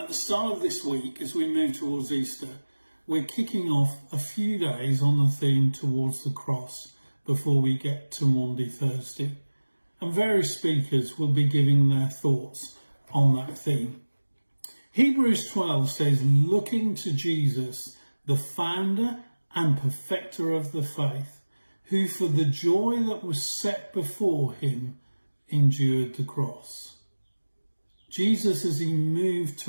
the start of this week, as we move towards Easter, we're kicking off a few days on the theme towards the cross before we get to Maundy Thursday. And various speakers will be giving their thoughts on that theme. Hebrews 12 says, looking to Jesus, the founder and perfecter of the faith, who for the joy that was set before him endured the cross. Jesus, as he moved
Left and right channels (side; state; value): both; inverted; correlation -1.00